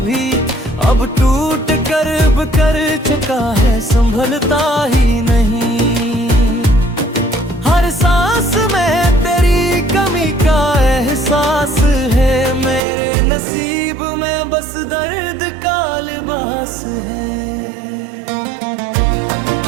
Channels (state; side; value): drops out; left; at 12.8 s